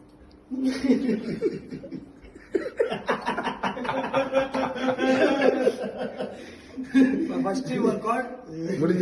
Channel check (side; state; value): both; identical; correlation 1.00